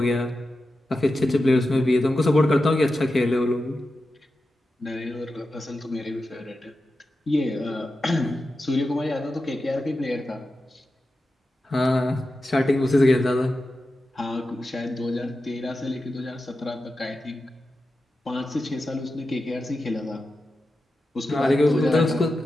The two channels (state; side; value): normal; both; correlation 0.91